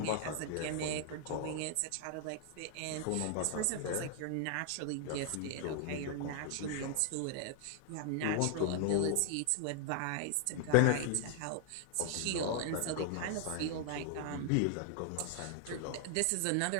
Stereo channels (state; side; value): different; both; correlation 0.00